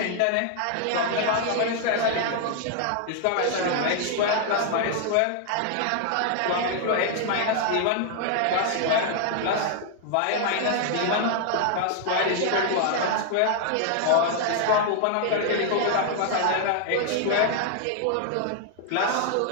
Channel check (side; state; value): both; different; correlation 0.00